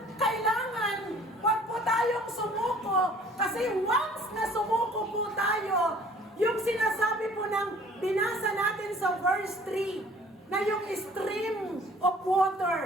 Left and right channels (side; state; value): both; normal; correlation 0.53